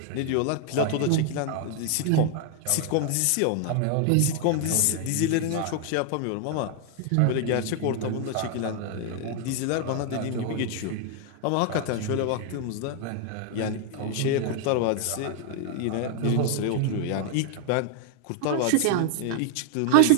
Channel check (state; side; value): different; both; correlation 0.00